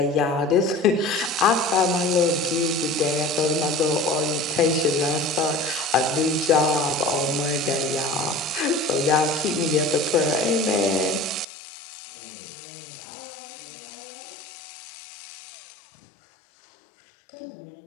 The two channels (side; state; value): right; drops out; at 11.5 s